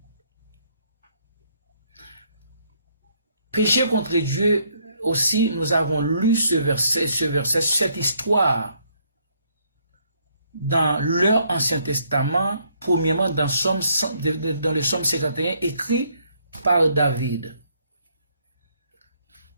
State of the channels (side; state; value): both; inverted; correlation -0.70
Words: Péché contre Dieu aussi, nous avons lu ce verset, cette histoire dans leur Ancien Testament, premièrement dans le Psaume 51, écrit par David.